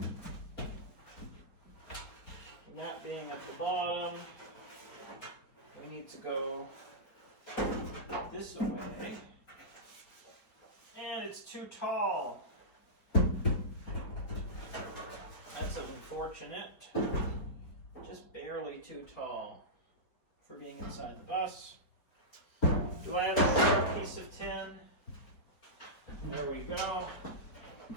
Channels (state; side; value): late; right; 4.8 ms